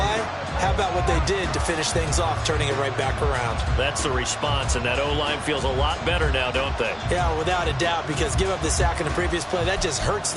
How about what they did to finish things off, turning it right back around? That's the response, and that O-line feels a lot better now, don't they? Yeah, without a doubt, because give up the sack in the previous play, that just hurts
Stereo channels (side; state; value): both; identical; correlation 1.00